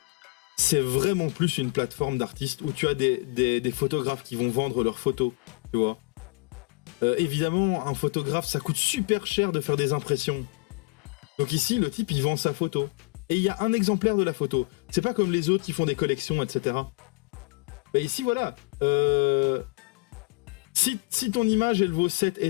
c'est vraiment plus une plateforme d'artistes où tu as des photographes qui vont vendre leurs photos, tu vois. Évidemment, un photographe, ça coûte super cher de faire des impressions. Donc ici, le type, il vend sa photo. Et il y a un exemplaire de la photo. C'est pas comme les autres qui font des collections, etc. Bah ici, voilà. Si ton image, elle vaut 7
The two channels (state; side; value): quieter; right; 25.8 dB